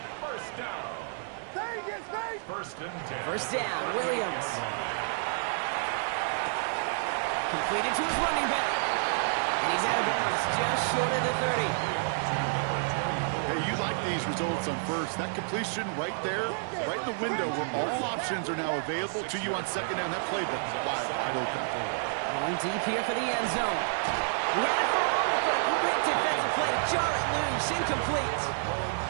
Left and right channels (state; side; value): silent; left; 58 dB below the other